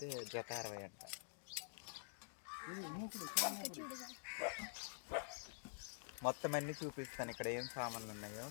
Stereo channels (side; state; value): right; silent; digital silence